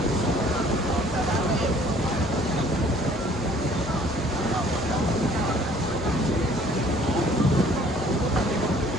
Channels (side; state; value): both; normal; correlation 0.56